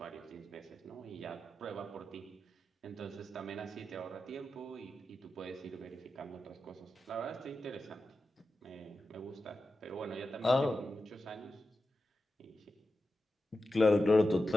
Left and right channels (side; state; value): both; normal; correlation 0.91